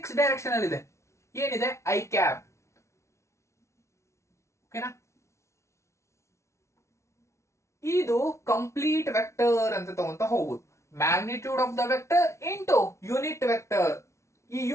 ಡೈರೆಕ್ಷನ್ ಅಲ್ಲಿ ಇದೆ. ಏನಿದೆ? I cap. ಓಕೆನಾ? ಇದು ಕಂಪ್ಲೀಟ್ ವೆಕ್ಟರ್ ಅಂತ ತಗೊಂತ ಹೋಗುದು. Magnitude of the vector into unit vector. ಈ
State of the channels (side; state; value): right; late; 0.14 ms